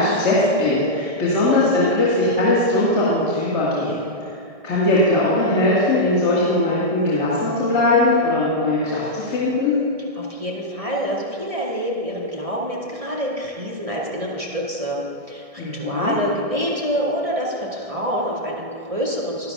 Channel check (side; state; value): left; late; 1.6 ms